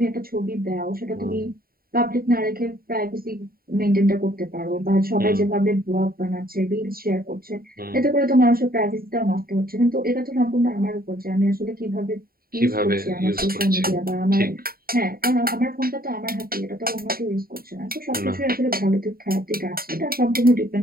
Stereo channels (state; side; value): late; left; 0.43 ms